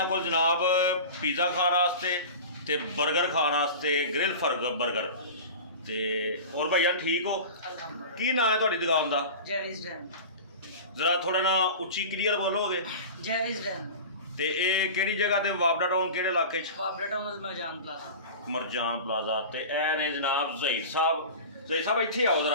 को जनाब पिज़्ज़ा खाने वास्ते ते बर्गर खाने वास्ते, ग्रिल बर्गर ते और भैया ठीक हो? अल्हम्दुलिल्लाह। की नाम है तुहाडी दुकान का? जैविस डैन। जरा थोड़ा ना उच्ची क्लीयर बोलोगे? जैविस डैन। ते ये केड़ी जगह ते वाबना टाउन केड़े इलाके च? वाबना town Marjan plaza. Marjan plaza. ते ए ने जनाब जहीर साहब इत्थे आओ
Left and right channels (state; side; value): inverted; both; correlation -0.33